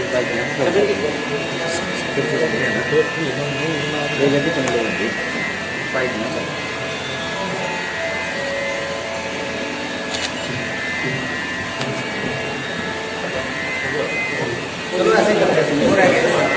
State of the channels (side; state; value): both; identical; correlation 1.00